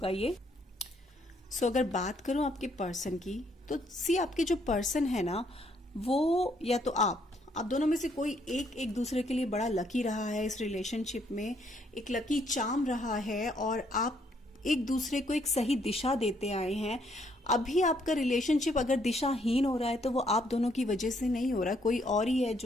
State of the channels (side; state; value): both; normal; correlation 0.70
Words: ये। सो अगर बात करूं आपके पर्सन की, तो सी आपके जो पर्सन है ना, वो या तो आप दोनों में से कोई एक दूसरे के लिए बड़ा लकी रहा है इस रिलेशनशिप में, एक लकी चार्म रहा है और आप एक दूसरे को एक सही दिशा देते आए हैं। अभी आपका रिलेशनशिप अगर दिशाहीन हो रहा है तो वो आप दोनों की वजह से नहीं हो रहा, कोई और ही है